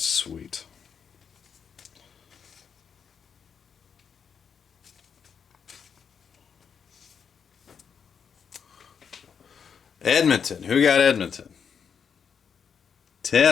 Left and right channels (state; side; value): quieter; right; 6.9 dB